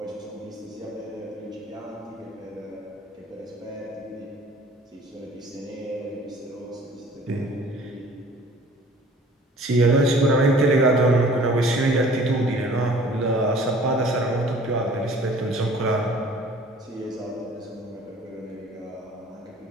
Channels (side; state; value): both; normal; correlation 0.50